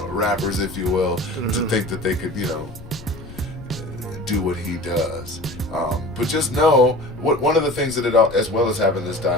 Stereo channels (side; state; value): left; noise; rumble, 16 dB below the sound